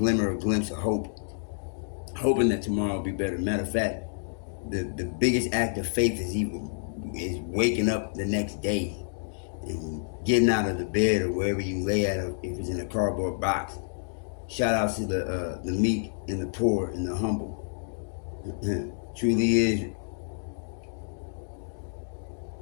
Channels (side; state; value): right; silent; digital silence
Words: or glimpse of hope, hoping that tomorrow will be better. Matter of fact, the biggest act of faith is waking up the next day and getting out of the bed or wherever you lay at, if it's in a cardboard box. Shout out to the meek and the poor and the humble. Truly is